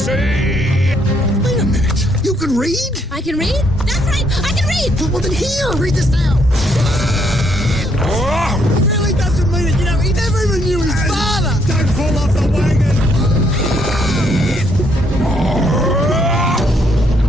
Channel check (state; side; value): normal; both; correlation 0.71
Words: Wait a minute. You can read? I can read? That's right. I can read. Well, then here, read this now. He really doesn't mean it. You know, he never even knew his father. Don't fall off the wagon!